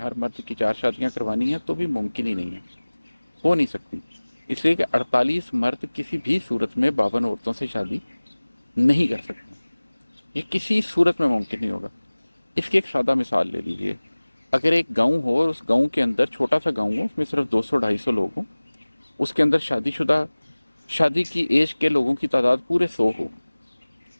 مرد کی 4 شادیاں کروانی ہیں، تو بھی ممکن ہی نہیں ہے، ہو نہیں سکتی، اس لیے کہ 48 مرد کسی بھی صورت میں 52 عورتوں سے شادی نہیں کر سکتے، یہ کسی صورت میں ممکن نہیں ہوگا۔ اس کی ایک سادہ مثال لے لیجیے، اگر ایک گاؤں ہو اور اس گاؤں کے اندر چھوٹا سا گاؤں ہو، اس میں صرف 200-250 لوگ ہوں، اس کے اندر شادی کی ایج کے لوگوں کی تعداد پورے 100 ہو،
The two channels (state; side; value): inverted; both; correlation -1.00